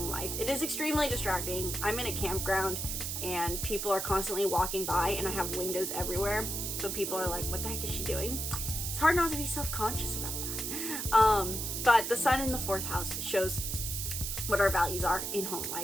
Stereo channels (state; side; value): noise; right; hiss, 3 dB below the sound